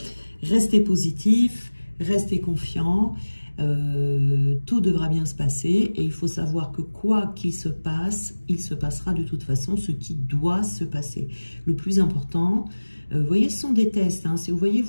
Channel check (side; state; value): both; inverted; correlation -1.00